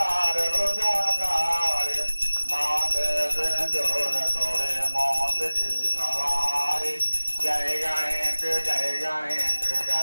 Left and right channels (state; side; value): inverted; both; correlation -1.00